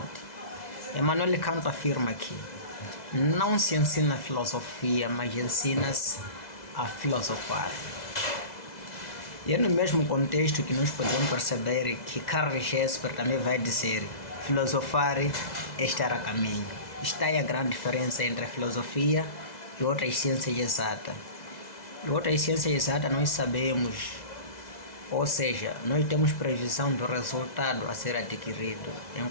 Emmanuel Kant afirma que não se ensina filosofia, mas ensina-se a filosofar. E é no mesmo contexto que nós podemos perceber que Karl Jesper também vai dizer: filosofar é estar a caminho. Está aí a grande diferença entre a filosofia e outras ciências exatas. E outras ciências exatas nós sabemos, ou seja, nós temos previsão do resultado a ser adquirido,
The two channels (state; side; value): late; right; 2.0 ms